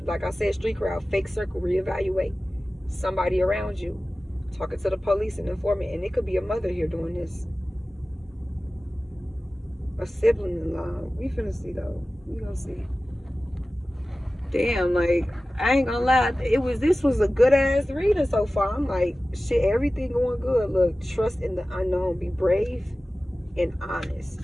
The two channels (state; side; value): normal; both; correlation 0.96